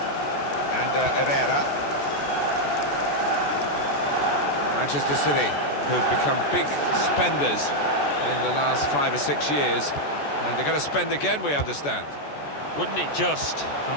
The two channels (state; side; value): late; right; 14 ms